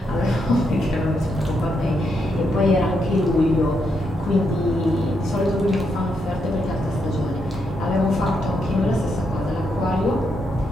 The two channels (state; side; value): normal; both; correlation 0.80